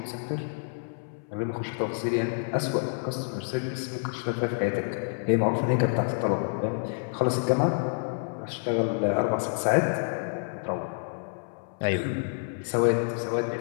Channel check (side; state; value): right; silent; 59 dB below the other